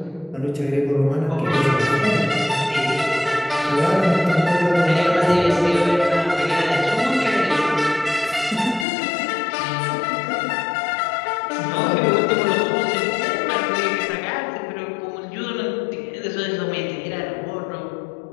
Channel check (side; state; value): right; drops out; at 8.8 s